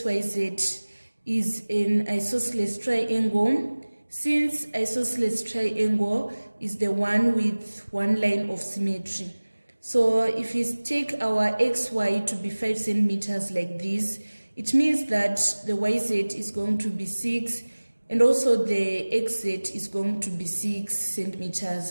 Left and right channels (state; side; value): inverted; both; correlation -1.00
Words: is an isosceles triangle. Since isosceles triangle is the one with one line of symmetry. So if we take our XY to be 5 centimeters like this, it means that the YZ is going to be 6 and also the XZ is going to be 6